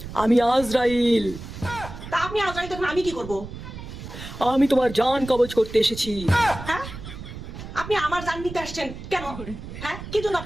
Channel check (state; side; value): noise; right; rumble, 11 dB below the sound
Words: আমি আজরাইল। তা আপনি আজরাইল তখন আমি কি করব? আমি তোমার জান কবজ করতে এসেছি। হ্যাঁ, আপনি আমার জান নিতে আসছেন কেন? হ্যাঁ, কি জন্য